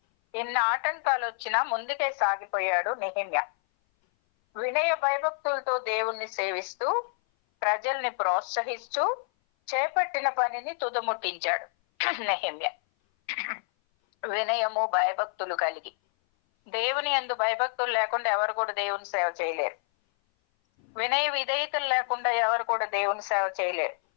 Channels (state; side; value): silent; right; 57 dB below the other